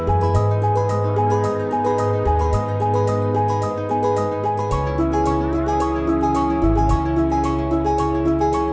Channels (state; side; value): identical; both; correlation 1.00